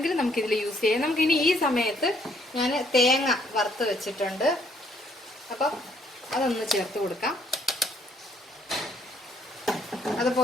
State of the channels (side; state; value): both; normal; correlation 0.66